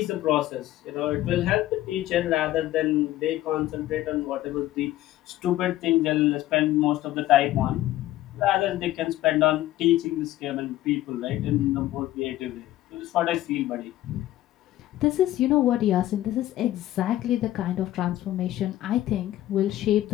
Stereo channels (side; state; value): right; quieter; 14.6 dB